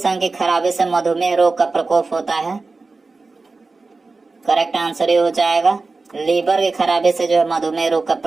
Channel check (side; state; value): left; quieter; 3.8 dB